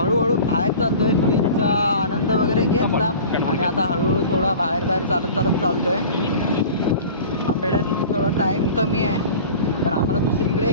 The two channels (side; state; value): both; inverted; correlation -0.40